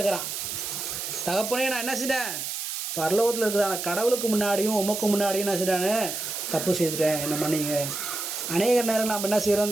தகப்பனே, நான் என்ன செஞ்சேன்? பரலோகத்தில் இருக்குதான கடவுளுக்கு முன்னாடியும் உமக்கு முன்னாடியும் என்ன செஞ்சானே தப்பு செய்துட்டேன், என்ன மன்னிங்க. அநேக நேரம் நம்ம என்ன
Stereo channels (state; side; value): noise; right; hiss, 4 dB below the sound